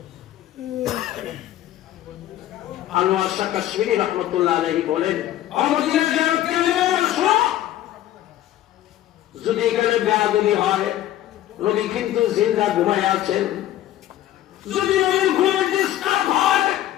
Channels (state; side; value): quieter; right; 13.3 dB